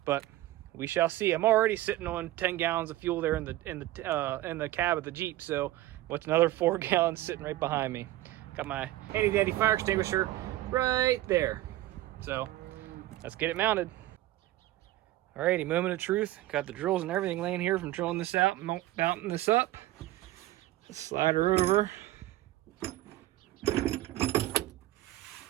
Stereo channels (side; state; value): left; quieter; 15.9 dB